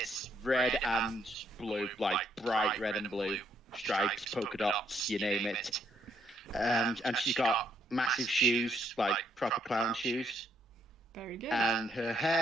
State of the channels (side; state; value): both; normal; correlation 0.72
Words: red and blue, like bright red and blue stripes, polka dots, you name it. And she's got massive shoes, like proper clown shoes. Very good. And her